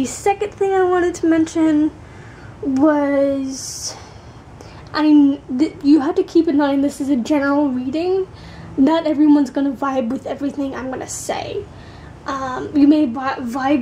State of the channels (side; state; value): both; identical; correlation 1.00